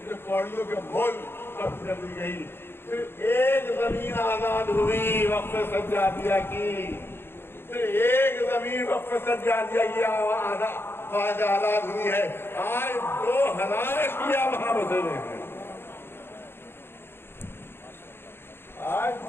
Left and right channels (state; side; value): late; right; 0.11 ms